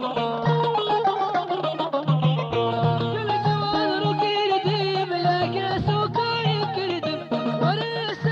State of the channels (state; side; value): identical; both; correlation 1.00